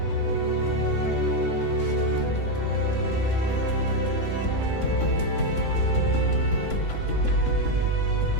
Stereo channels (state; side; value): late; right; 3.8 ms